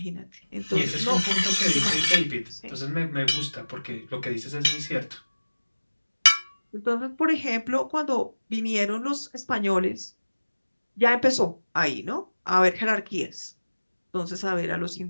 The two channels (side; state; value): both; inverted; correlation -1.00